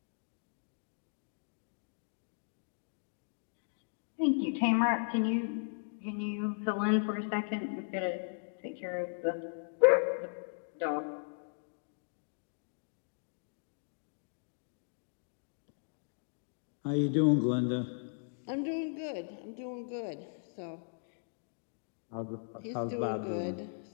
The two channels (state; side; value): silent; right; digital silence